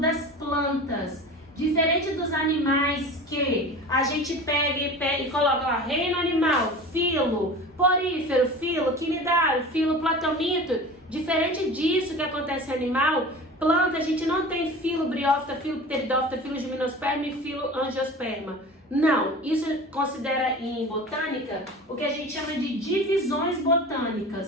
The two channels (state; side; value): normal; both; correlation 0.36